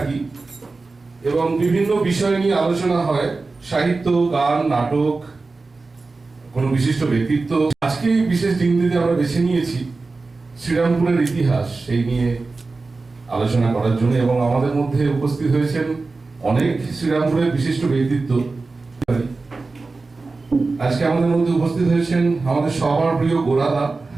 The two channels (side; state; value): left; quieter; 3.8 dB